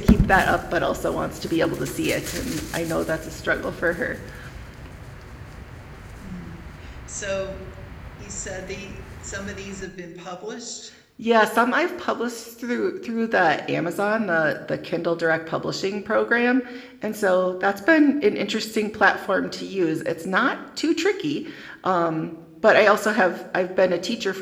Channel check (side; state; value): both; identical; correlation 1.00